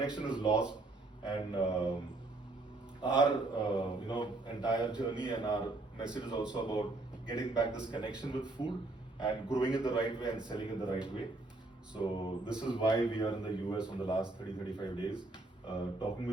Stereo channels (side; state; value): left; quieter; 3.0 dB